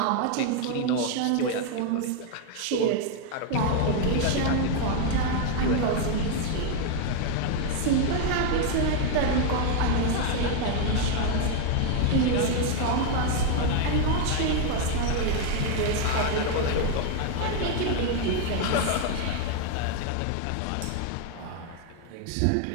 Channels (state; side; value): different; both; correlation 0.01